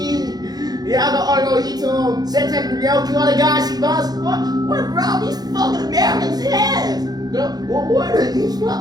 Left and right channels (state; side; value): late; left; 0.19 ms